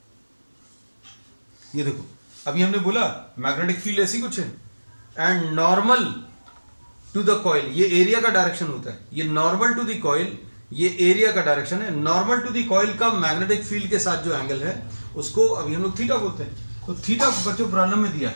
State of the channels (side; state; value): both; inverted; correlation -1.00